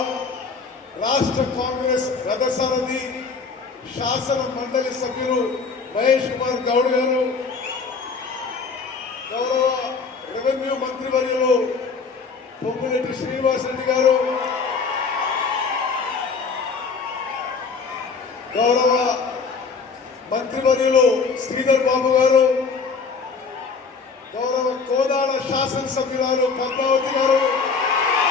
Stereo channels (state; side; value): quieter; right; 4.9 dB